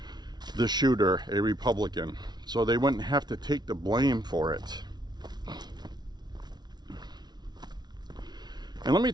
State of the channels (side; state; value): left; late; 0.20 ms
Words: the shooter a Republican, so they wouldn't have to take the blame for it. And let me